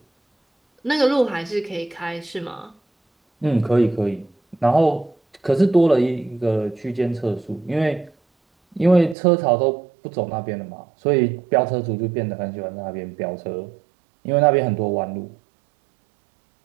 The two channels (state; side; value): drops out; left; at 9.2 s